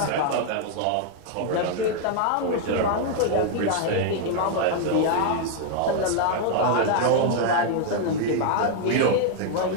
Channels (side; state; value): both; different; correlation 0.00